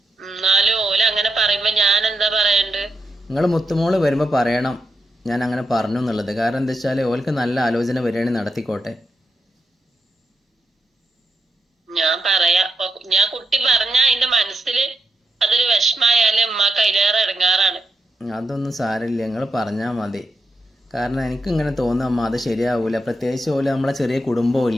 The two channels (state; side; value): normal; both; correlation 0.84